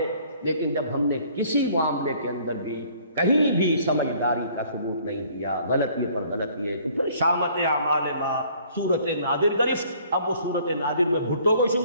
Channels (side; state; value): both; inverted; correlation -0.58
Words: لیکن جب ہم نے کسی معاملے کے اندر بھی کہیں بھی سمجھداری کا ثبوت نہیں دیا، غلطی پر غلطی ہے، تو پھر شامت اعمال ما صورت نادر گرفت۔ اب وہ صورت نادر میں بھٹو کو